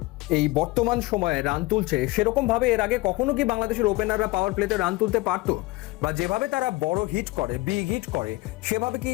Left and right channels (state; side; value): quieter; right; 21.5 dB